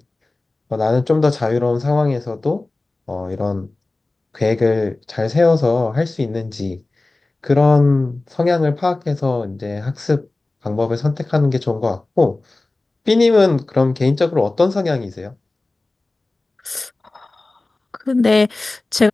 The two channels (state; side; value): quieter; right; 3.1 dB